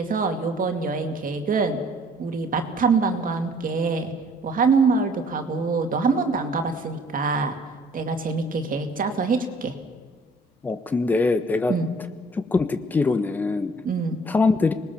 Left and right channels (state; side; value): normal; both; correlation 0.57